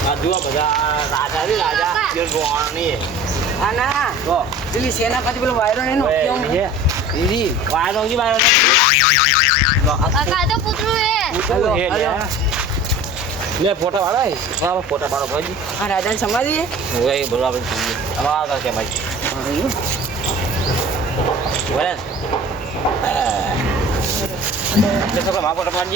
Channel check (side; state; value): both; normal; correlation 0.41